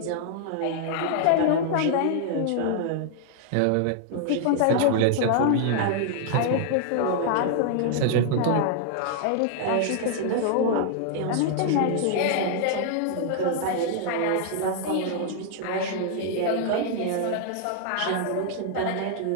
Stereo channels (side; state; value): both; different; correlation -0.01